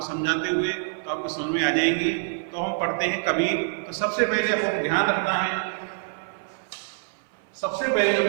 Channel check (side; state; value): left; silent; 61 dB below the other